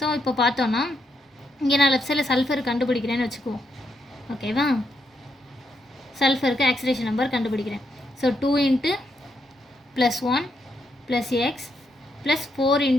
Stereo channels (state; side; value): normal; both; correlation 0.79